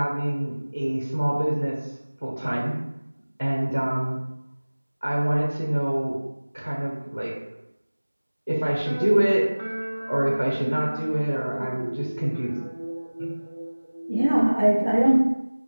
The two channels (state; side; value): inverted; both; correlation -1.00